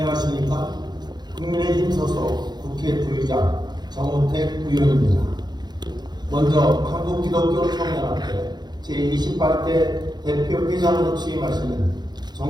국민의힘 소속 국회 부의장 정우택 의원입니다. 먼저 한국기독교총연합회 제28대 대표 회장으로 취임하시는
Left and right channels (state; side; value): late; left; 0.20 ms